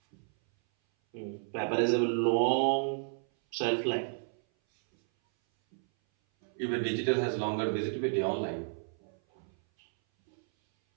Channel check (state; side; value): silent; left; 57 dB below the other